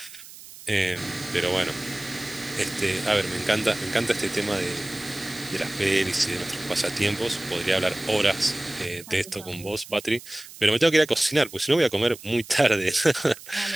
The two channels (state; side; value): noise; right; hiss, 17 dB below the sound